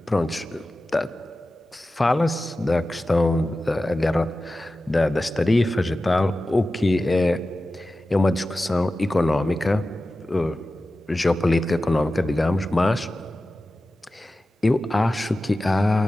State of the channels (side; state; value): both; normal; correlation 0.94